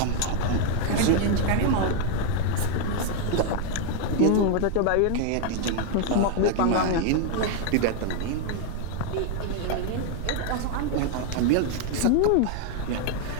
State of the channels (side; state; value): both; different; correlation 0.00